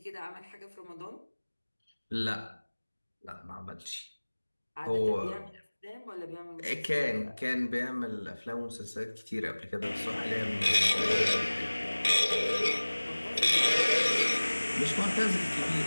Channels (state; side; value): inverted; both; correlation -1.00